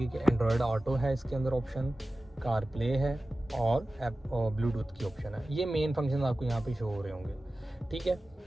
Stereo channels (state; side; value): normal; both; correlation 0.96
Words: कि एंड्रॉयड ऑटो है, इसके अंदर ऑप्शन कार प्ले है और ऐप और ब्लूटूथ की ऑप्शन है। ये मेन फंक्शन आपको यहाँ पे शो हो रहे होंगे, ठीक है।